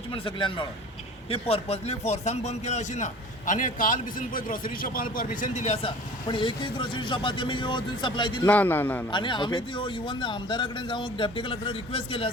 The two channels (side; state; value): both; normal; correlation 0.44